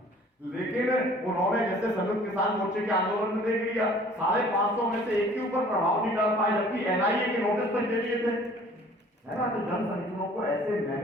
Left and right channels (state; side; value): normal; both; correlation 0.52